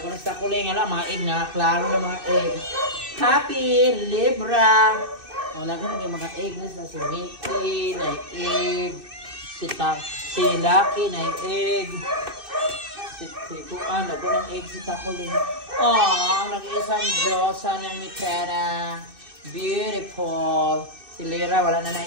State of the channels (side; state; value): left; late; 2.6 ms